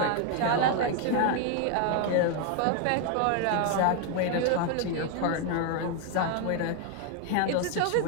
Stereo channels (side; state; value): both; different; correlation 0.00